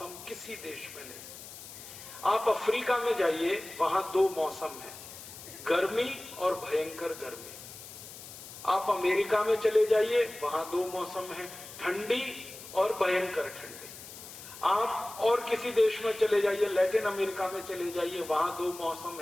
किसी देश में नहीं। आप अफ्रीका में जाइए, वहां 2 मौसम है, गर्मी और भयंकर गर्मी। आप अमेरिका में चले जाइए, वहां 2 मौसम है, ठंडी और भयंकर ठंडी। आप और किसी देश में चले जाइए, लैटिन अमेरिका में चले जाइए, वहां 2 मौसम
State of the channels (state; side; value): noise; left; hiss, 14 dB below the sound